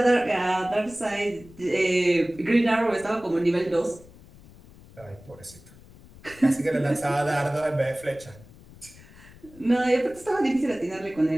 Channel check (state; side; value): noise; left; rumble, 22 dB below the sound